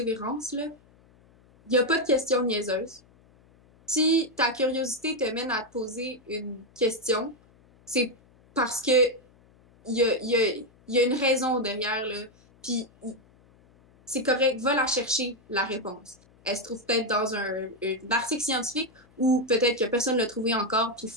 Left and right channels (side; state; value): left; noise; hum, 29 dB below the sound